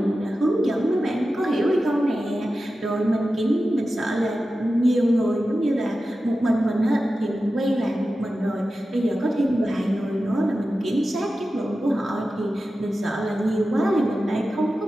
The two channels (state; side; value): normal; both; correlation 0.93